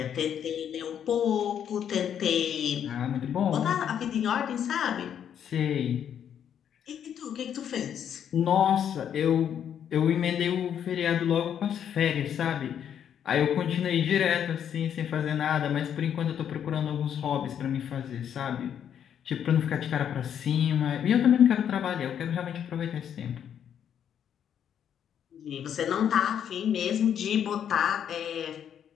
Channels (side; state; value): right; quieter; 9.0 dB